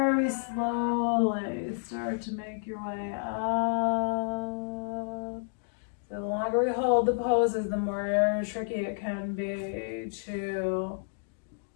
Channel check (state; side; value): silent; right; digital silence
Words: slowly start to make your way up. So the longer we hold the poses, the more tricky it can be to